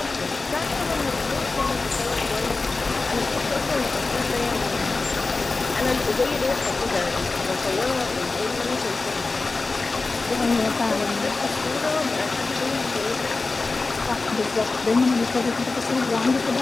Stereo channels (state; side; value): quieter; right; 3.7 dB